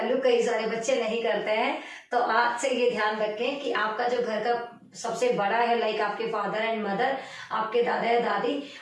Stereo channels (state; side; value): identical; both; correlation 1.00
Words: कई सारे बच्चे नहीं करते हैं। तो आज से ये ध्यान रखें कि आपका जो घर का सबसे बड़ा है, लाइक आपके फादर एंड मदर, आपके दादा या दादी,